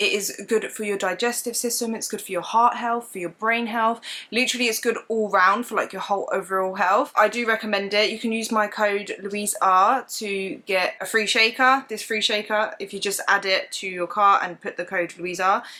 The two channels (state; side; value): identical; both; correlation 1.00